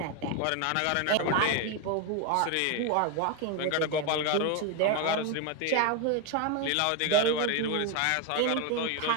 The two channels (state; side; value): different; both; correlation 0.02